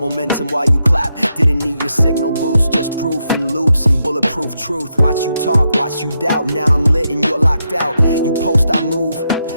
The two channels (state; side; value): inverted; both; correlation -0.83